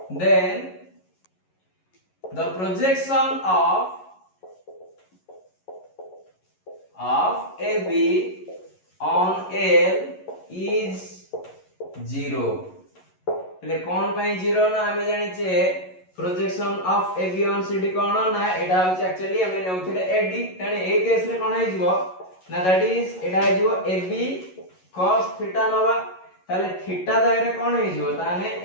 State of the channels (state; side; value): late; right; 11 ms